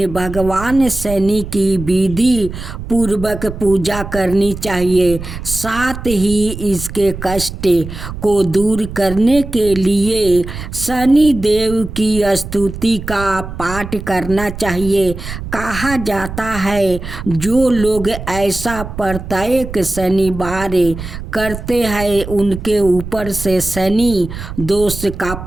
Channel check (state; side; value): noise; right; rumble, 10 dB below the sound